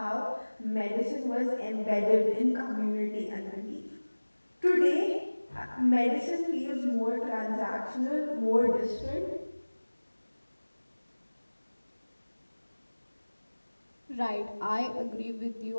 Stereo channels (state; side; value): inverted; both; correlation -1.00